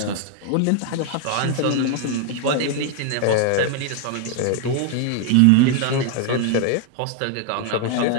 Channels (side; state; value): both; different; correlation 0.00